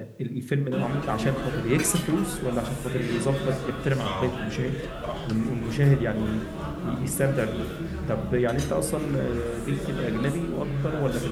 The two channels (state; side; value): identical; both; correlation 1.00